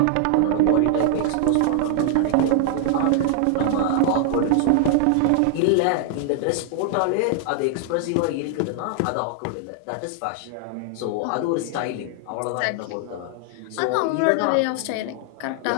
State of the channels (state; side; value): different; both; correlation 0.00